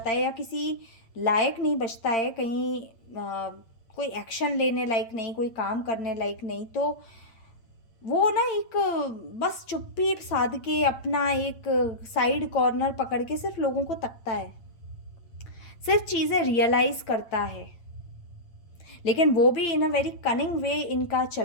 है या किसी लायक नहीं बचता है, कहीं कोई एक्शन लेने लायक नहीं, कोई काम करने लायक नहीं, तो वो ना एक बस चुप्पी साध के अपना एक साइड कॉर्नर पकड़ के सिर्फ लोगों को तकता है, सिर्फ चीज़ें रियलाइज़ करता है। लेकिन वो भी इन अ वेरी कनिंग वे इनका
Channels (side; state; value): right; late; 8.8 ms